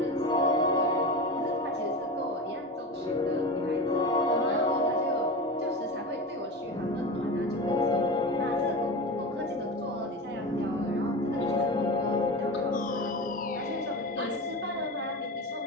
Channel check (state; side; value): normal; both; correlation 0.26